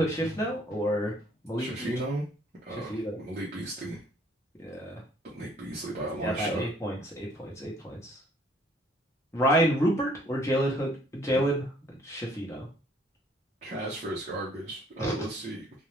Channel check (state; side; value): normal; both; correlation 0.61